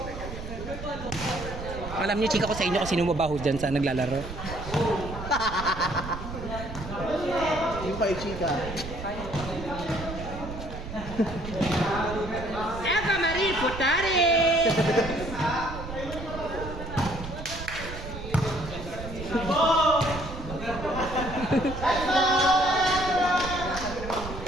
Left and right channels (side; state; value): right; noise; rumble, 9 dB below the sound